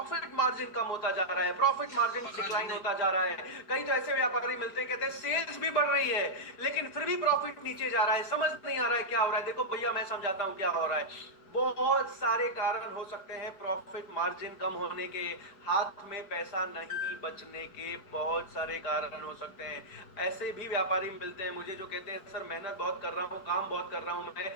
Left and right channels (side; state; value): right; late; 4.8 ms